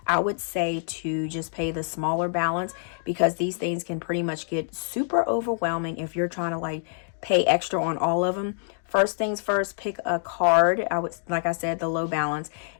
I would say to just pay the smaller balance, because these things can pretty much get super overwhelming if you're trying to like pay extra on all of them. First things first, pick a card. I would, like I said, the low balance,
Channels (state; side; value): silent; right; digital silence